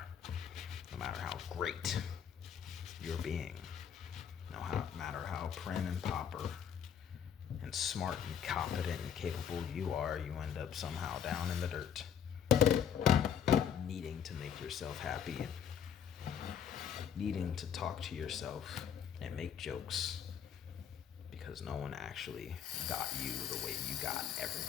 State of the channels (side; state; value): right; quieter; 8.2 dB